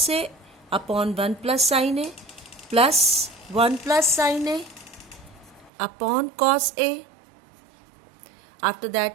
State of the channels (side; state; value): left; drops out; at 5.7 s